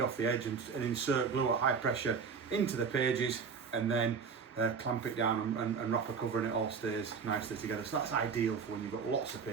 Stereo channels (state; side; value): quieter; left; 5.8 dB